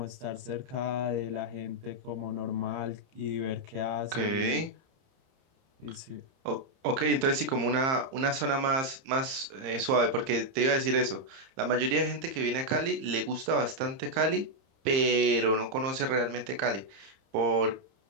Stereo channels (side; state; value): left; late; 30 ms